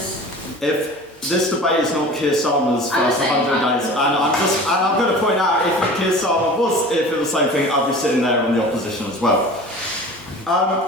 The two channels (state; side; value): normal; both; correlation 0.39